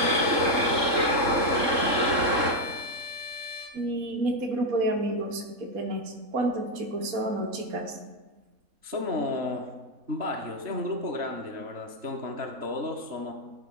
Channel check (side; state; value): left; late; 3.7 ms